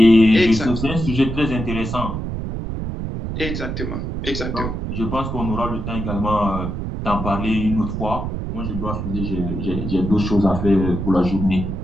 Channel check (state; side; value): noise; right; rumble, 4 dB below the sound